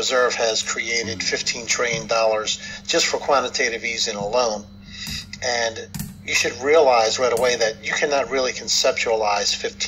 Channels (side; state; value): both; identical; correlation 1.00